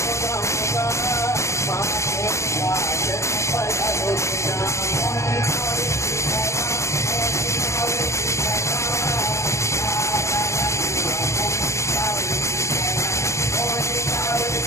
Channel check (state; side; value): late; right; 0.14 ms